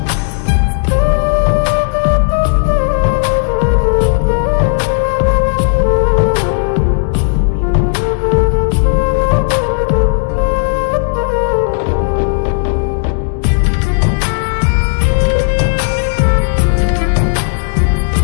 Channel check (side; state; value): right; silent; digital silence